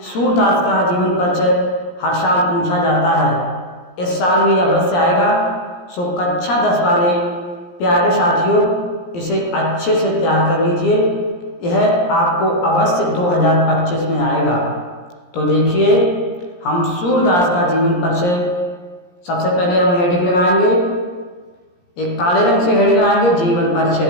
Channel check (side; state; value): right; late; 17 ms